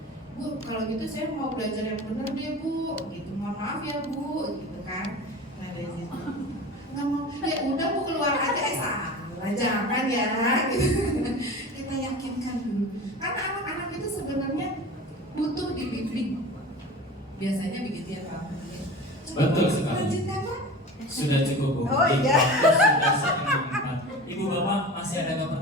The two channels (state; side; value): normal; both; correlation 0.35